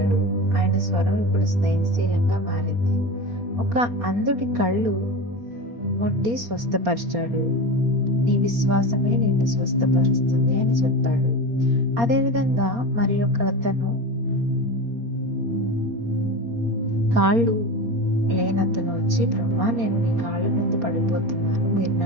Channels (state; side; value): late; left; 4.3 ms